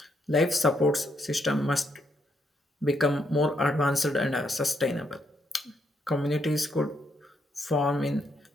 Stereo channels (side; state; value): both; normal; correlation 0.77